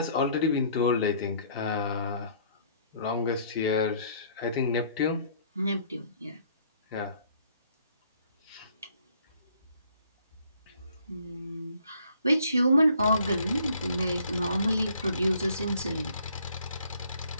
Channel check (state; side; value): inverted; both; correlation -0.61